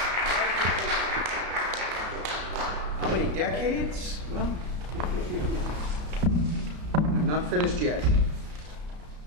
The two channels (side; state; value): left; late; 33 ms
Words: How many decades? Well, I'm not finished yet.